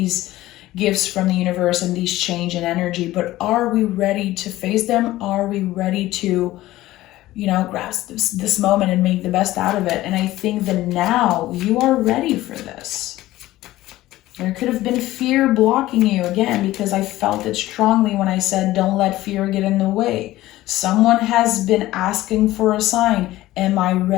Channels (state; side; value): quieter; right; 16.3 dB